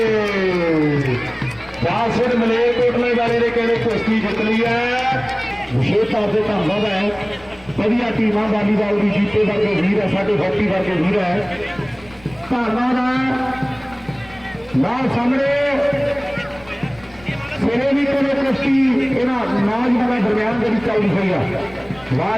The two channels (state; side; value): noise; left; rumble, 24 dB below the sound